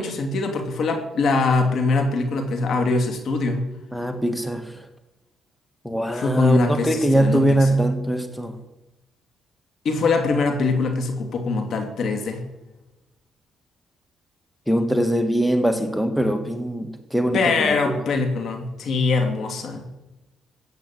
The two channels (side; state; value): both; normal; correlation 0.81